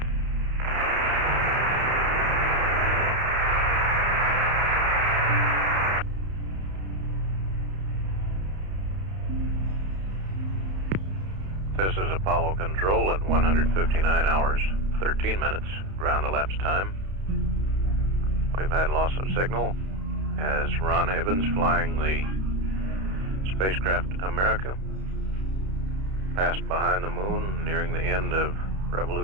This is Apollo Control at 159 hours, 13 minutes, ground elapsed time. We've had loss of signal as Ron Evans, flying the spacecraft America, passed behind the moon, nearing the end of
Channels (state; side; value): late; left; 31 ms